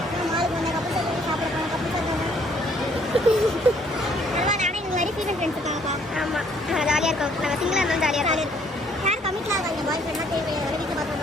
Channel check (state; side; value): normal; both; correlation 0.63